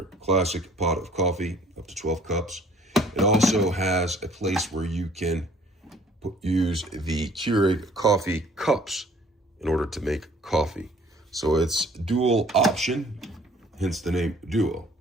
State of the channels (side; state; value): both; normal; correlation 0.56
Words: classic pot of coffee up to 12 cups. It also has a place where you can use the Keurig coffee cups in order to make coffee. So it's dual option, hence the name Duo.